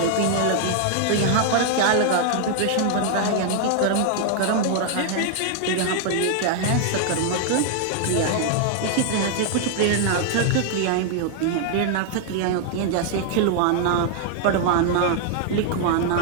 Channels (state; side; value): different; both; correlation 0.00